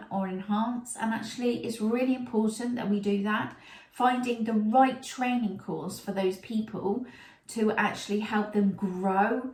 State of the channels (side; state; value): both; identical; correlation 1.00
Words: or enhance. And actually it's really important that we do that, finding the right training course for those people to actually help them grow